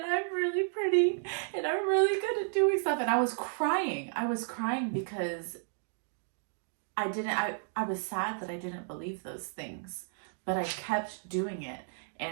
I'm really pretty, and I'm really good at doing stuff. And I was crying. I was crying because I was sad that I didn't believe those things, but I kept doing it.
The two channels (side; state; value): left; silent; digital silence